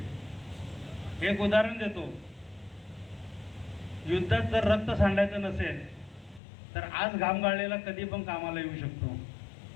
एक उदाहरण देतो. युद्धात जर रक्त सांडायचं नसेल तर आज घाम गाळलेला कधी पण कामाला येऊ शकतो.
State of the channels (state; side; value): drops out; right; at 6.4 s